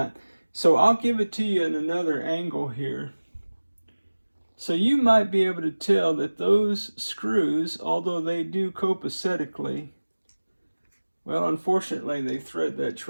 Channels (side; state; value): both; inverted; correlation -1.00